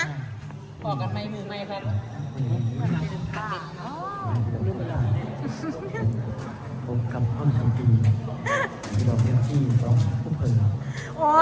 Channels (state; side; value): identical; both; correlation 1.00